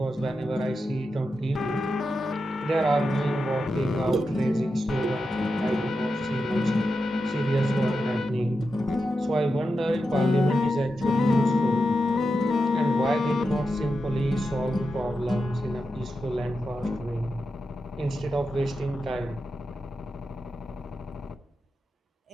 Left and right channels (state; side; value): normal; both; correlation 0.89